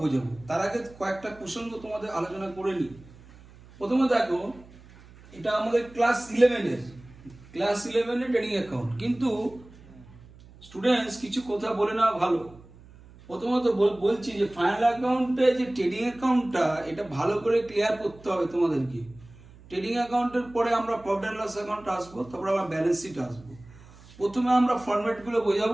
বোঝাবো। তার আগে কয়েকটা প্রসঙ্গ তোমাদের আলোচনা করে নিই। প্রথমে দেখো, এটা আমাদের ক্লাস ইলেভেনের ট্রেডিং অ্যাকাউন্ট, কিন্তু স্টুডেন্টস কিছু কথা বলে নেওয়া ভালো। প্রথমত বলছি যে ফাইনাল অ্যাকাউন্টে যে ট্রেডিং অ্যাকাউন্টটা, এটা ভালো করে ক্লিয়ার করতে হবে তোমাদেরকে। ট্রেডিং অ্যাকাউন্টের পরে আমরা প্রফিট অ্যান্ড লস অ্যাকাউন্ট আসবো, তারপর আমরা ব্যালেন্স শিট আসবো। প্রথমে আমরা ফরম্যাটগুলো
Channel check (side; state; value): right; noise; hum, 22 dB below the sound